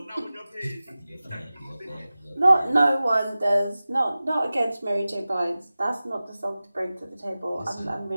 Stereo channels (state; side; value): inverted; both; correlation -0.96